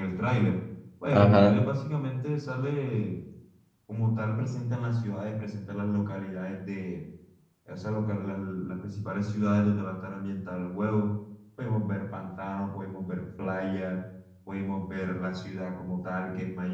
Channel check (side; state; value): both; identical; correlation 1.00